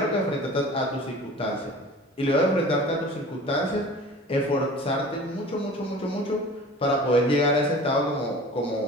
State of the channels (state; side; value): normal; both; correlation 0.41